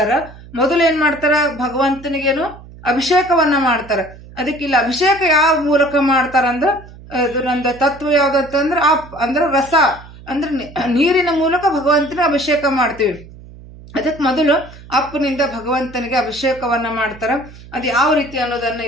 ಮೊದಲು ಏನ್ ಮಾಡ್ತಾರ, ಭಗವಂತನಿಗೇನು ಅಭಿಷೇಕವನ್ನ ಮಾಡ್ತಾರ. ಅದಕ್ಕೆ ಇಲ್ಲಿ ಅಭಿಷೇಕ ಯಾವ ಮೂಲಕ ಮಾಡ್ತಾರಂದ್ರ ನಂದು ತತ್ವ ಯಾವ್ದಂತಂದ್ರ ಅಂದ್ರ ರಸ ಅಂದ್ರೆ ನೀರಿನ ಮೂಲಕ ಭಗವಂತನ ಅಭಿಷೇಕ ಮಾಡ್ತೀವಿ. ಅದಕ್ಕೆ ಮೊದಲು ಅಪ್ಪನಿಂದ ಭಗವಂತನಿಗೆ ಅಭಿಷೇಕವನ್ನ ಮಾಡ್ತಾರ. ಅದು ಯಾವ ರೀತಿ ಅನ್ನೋದನ್ನ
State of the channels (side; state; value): right; noise; hum, 19 dB below the sound